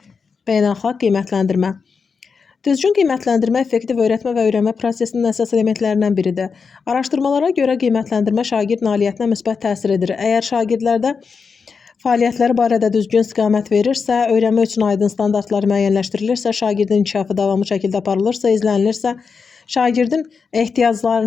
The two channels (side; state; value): right; quieter; 5.4 dB